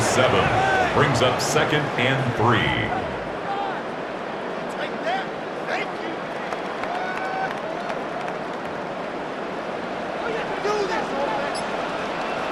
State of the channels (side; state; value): both; identical; correlation 1.00